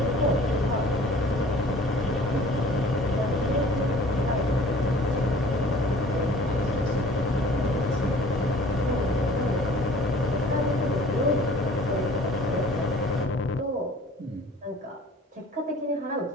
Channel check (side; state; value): both; normal; correlation 0.50